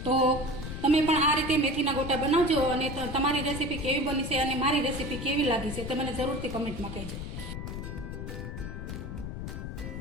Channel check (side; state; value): left; noise; rumble, 7 dB below the sound